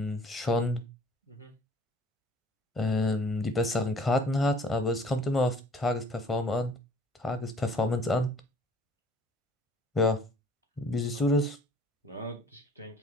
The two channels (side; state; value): both; normal; correlation 0.54